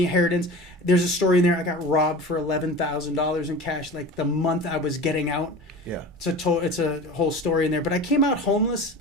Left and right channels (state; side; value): normal; both; correlation 0.35